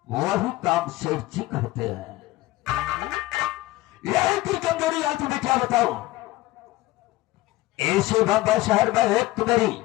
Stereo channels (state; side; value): quieter; right; 18.3 dB